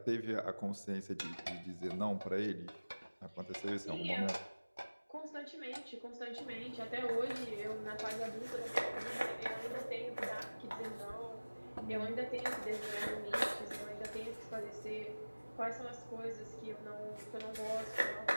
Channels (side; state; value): both; inverted; correlation -1.00